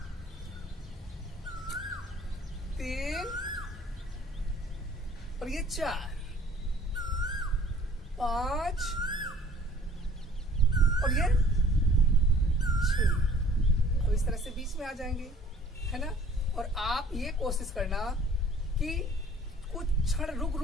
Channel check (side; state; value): both; normal; correlation 0.53